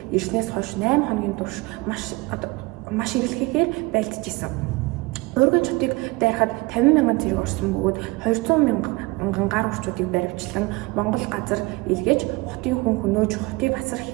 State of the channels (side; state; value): left; quieter; 23.5 dB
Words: ирснээс хойш 8 хоногийн турш маш эрэлхийгээр байлдаж исэн. Ургийн хотыг дайрахад 50 мянган цэрэг орсон бөгөөд 200 мянган гар урчуудыг баривчлан Монгол газар илгээж хотын хүн хөнөөж хотыг асар